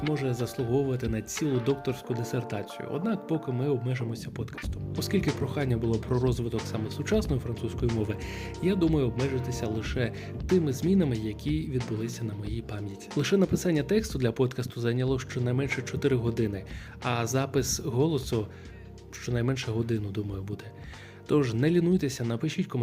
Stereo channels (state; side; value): identical; both; correlation 1.00